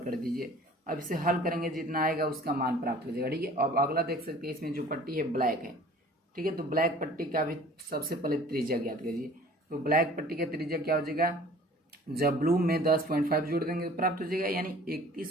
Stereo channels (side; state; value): both; normal; correlation 0.48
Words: कर दीजिए। अब इसे हल करेंगे जितना आएगा उसका मान प्राप्त हो जाएगा। ठीक है, अब अगला देख सकते हैं इसमें जो पट्टी है ब्लैक है, ठीक है। तो ब्लैक पट्टी का भी सबसे पहले त्रिज्या ज्ञात करिए। तो ब्लैक पट्टी का त्रिज्या क्या हो जाएगा, जब ब्लू में 10.5 जोड़ देंगे तो प्राप्त हो जाएगा, यानी